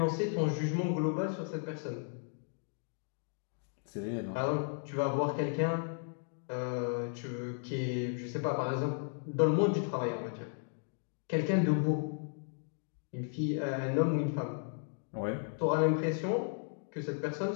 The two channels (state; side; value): silent; right; 55 dB below the other